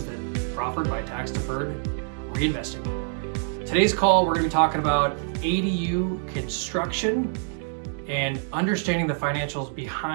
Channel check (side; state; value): left; silent; 61 dB below the other